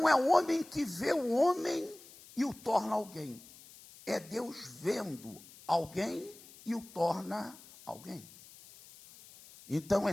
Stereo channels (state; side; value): noise; left; hiss, 21 dB below the sound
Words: é o homem que vê o homem e o torna alguém. É Deus vendo alguém e o torna alguém. Então é